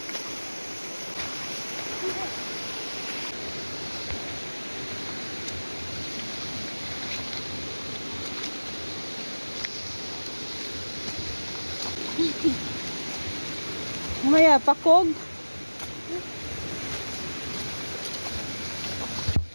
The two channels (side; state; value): both; inverted; correlation -1.00